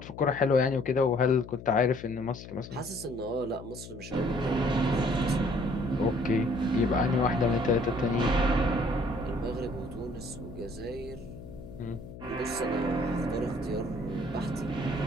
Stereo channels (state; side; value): noise; left; hum, 14 dB below the sound